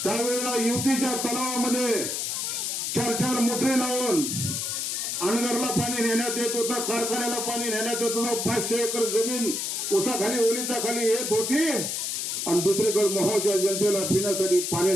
त्यावेळेला युतीच्या तलावामध्ये 4 मोटरी लावून अनगरला पाणी नेण्यात येत होतं, कारखान्याला पाणी नेण्यात येत होतं. 500 एकर जमीन उसाखाली ओलिता खाली येत होती आणि दुसरीकडे मोहोळच्या जनतेला पिण्यासाठी पाणी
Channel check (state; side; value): noise; left; hiss, 2 dB below the sound